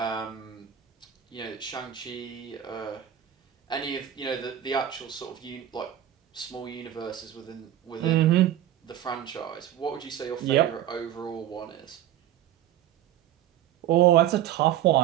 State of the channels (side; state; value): left; quieter; 11.5 dB